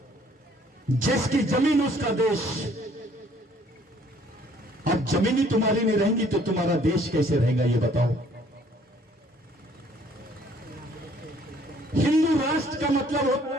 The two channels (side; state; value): both; normal; correlation 0.60